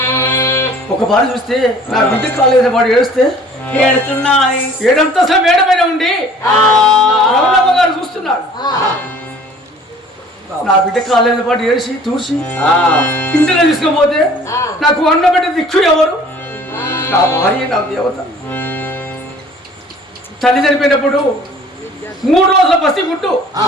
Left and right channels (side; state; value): both; normal; correlation 0.51